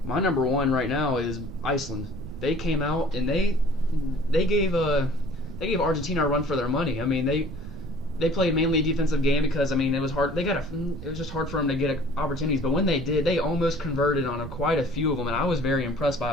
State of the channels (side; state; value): right; noise; rumble, 11 dB below the sound